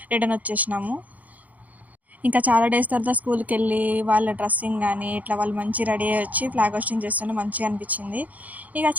రిటర్న్ వచ్చేసినాము. ఇంకా చాలా డేస్ తర్వాత స్కూల్కి వెళ్ళి వాళ్ళ డ్రెస్సింగ్ కానీ ఇట్లా వాళ్ళు మంచి రెడీ అయ్యి వచ్చి ఫ్లాగ్ హోస్టింగ్ చేస్తుంటే మంచిగా అనిపించింది. ఇక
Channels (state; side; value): late; left; 0.077 ms